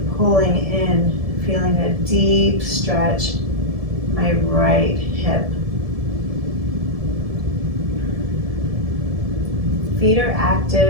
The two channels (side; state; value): left; late; 1.7 ms